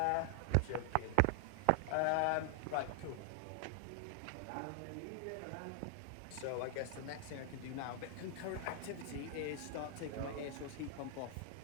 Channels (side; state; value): both; different; correlation 0.00